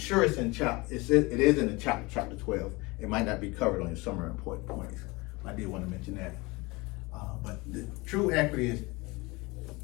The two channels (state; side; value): quieter; right; 24.2 dB